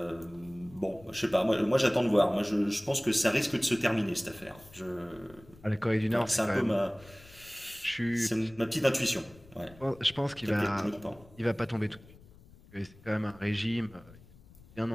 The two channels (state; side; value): noise; left; rumble, 23 dB below the sound